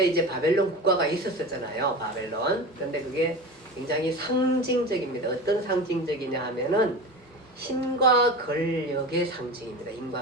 이제 바벨론 국가가 있었잖아요. 바벨론. 그런데 그게 굉장히 상징적입니다. 어떤 상징적이냐 하면은 힘과 권력의 상징입니다.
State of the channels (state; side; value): normal; both; correlation 0.29